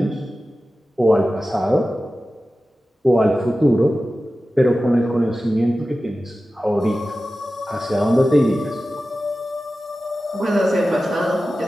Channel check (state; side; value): normal; both; correlation 0.94